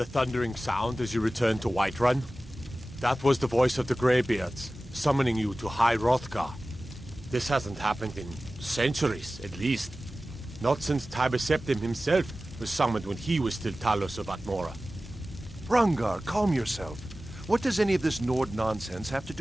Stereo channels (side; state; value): both; normal; correlation 0.96